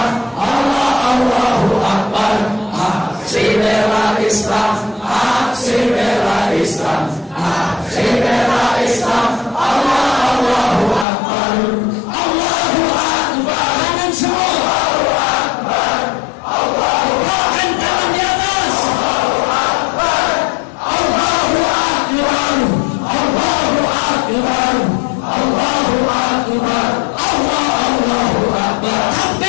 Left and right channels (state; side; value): drops out; right; at 11.1 s